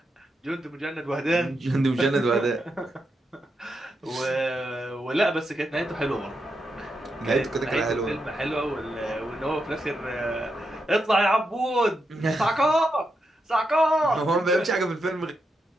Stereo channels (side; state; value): both; normal; correlation 0.84